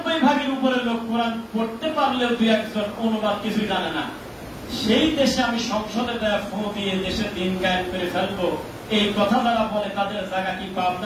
উপরে লোক কোরআন পড়তে পারলেও 2-1 অনুবাদ কিছুই জানে না, সেই দেশে আমি সংসদে দেয়া ফোন দিয়ে দেশের দিন কায়েম করে ফেলবো, এই কথা যারা বলে তাদের জায়গা কি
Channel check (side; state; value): both; identical; correlation 1.00